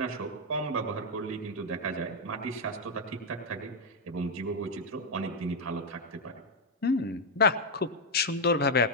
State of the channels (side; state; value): both; normal; correlation 0.01